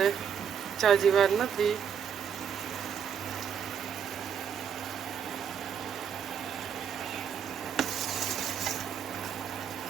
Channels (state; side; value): quieter; left; 7.8 dB